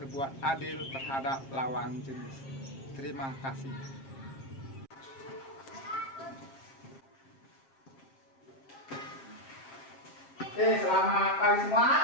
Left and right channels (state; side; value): late; right; 7.5 ms